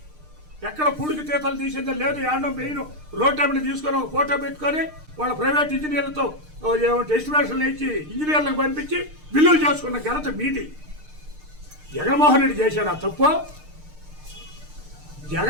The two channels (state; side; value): late; left; 6.6 ms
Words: ఎక్కడ పూడికి తీతలు తీసిందో లేదు. ఏడో మెయిన్ రోడ్ టైంని తీసుకొని ఒక ఫోటో పెట్టుకొని వాళ్ళ ప్రైవేట్ ఇంజనీర్లతో ఎస్టిమేషన్లు ఇచ్చి ఇంజనీర్లకు పంపించి బిల్లులు చేసుకున్న ఘనత మీది. జగన్మోహన్ రెడ్డి చేశాడు ఆ తప్పు.